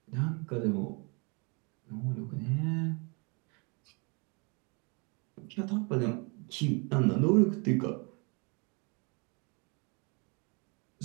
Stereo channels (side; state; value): left; quieter; 32.1 dB